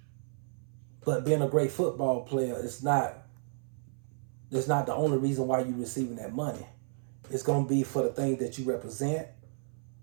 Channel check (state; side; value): silent; left; 56 dB below the other